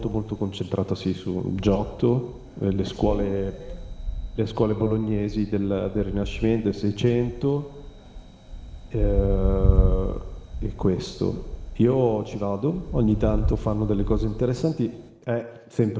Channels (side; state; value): both; identical; correlation 1.00